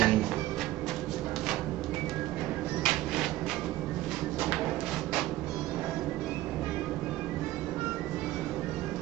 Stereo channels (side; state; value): left; quieter; 16.2 dB